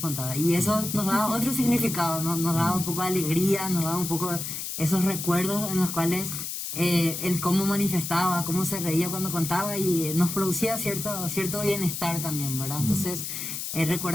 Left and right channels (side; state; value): left; noise; hiss, 5 dB below the sound